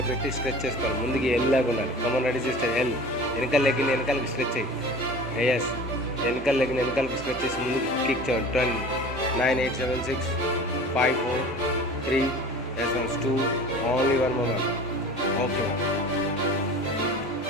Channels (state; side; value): normal; both; correlation 0.40